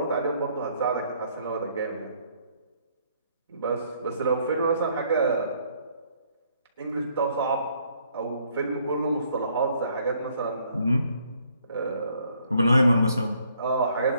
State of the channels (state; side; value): inverted; both; correlation -0.67